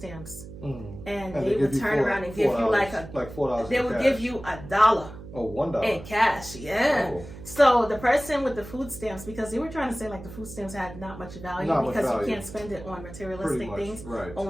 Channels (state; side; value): noise; right; hum, 14 dB below the sound